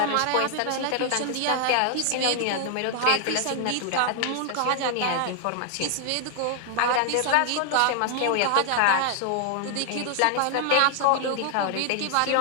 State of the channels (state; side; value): different; both; correlation 0.00